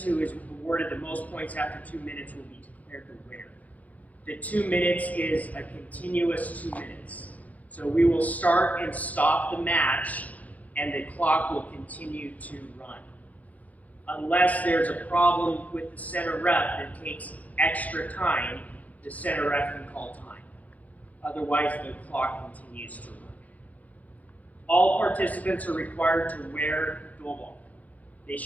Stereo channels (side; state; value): right; late; 0.076 ms